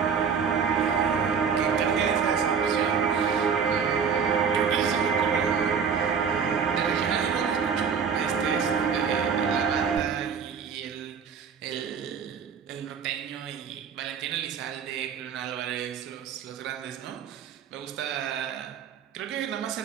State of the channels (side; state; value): left; quieter; 6.6 dB